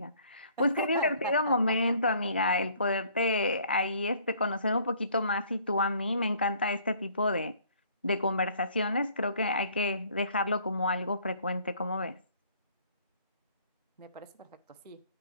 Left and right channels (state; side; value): inverted; both; correlation -0.58